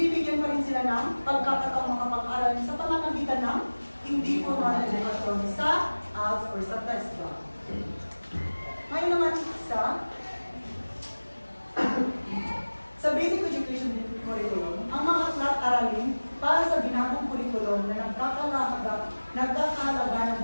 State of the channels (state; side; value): inverted; both; correlation -1.00